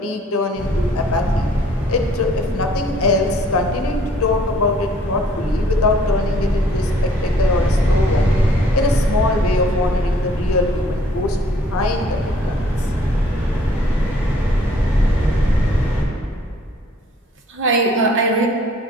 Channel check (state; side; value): normal; both; correlation 0.59